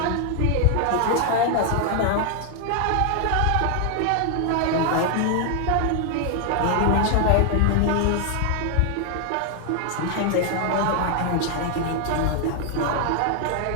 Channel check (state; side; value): different; both; correlation 0.00